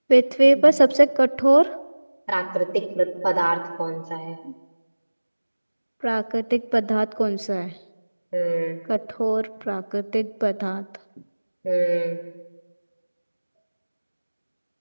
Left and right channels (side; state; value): both; inverted; correlation -1.00